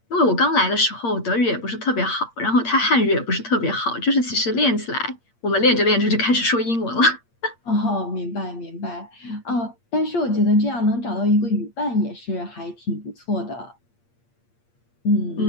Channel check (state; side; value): late; right; 8.6 ms